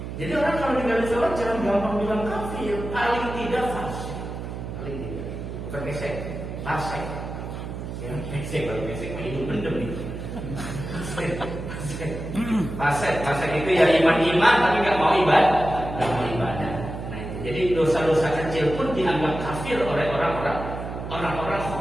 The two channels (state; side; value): noise; right; hum, 7 dB below the sound